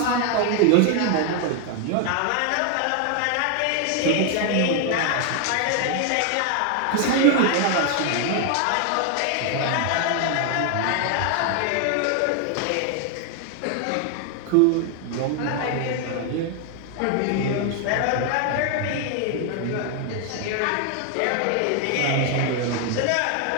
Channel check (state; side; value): different; both; correlation 0.00